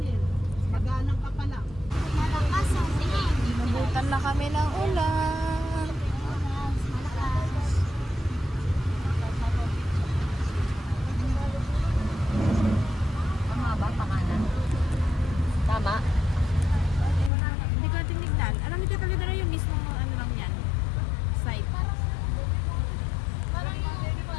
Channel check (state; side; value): drops out; right; at 17.3 s